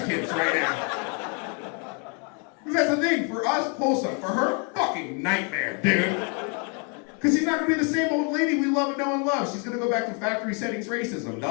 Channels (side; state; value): right; quieter; 37.0 dB